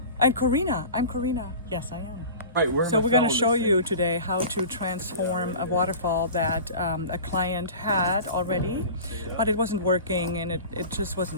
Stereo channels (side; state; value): both; inverted; correlation -0.37